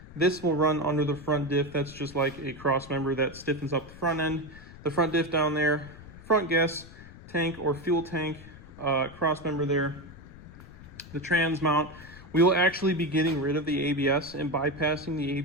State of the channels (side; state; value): left; noise; rumble, 18 dB below the sound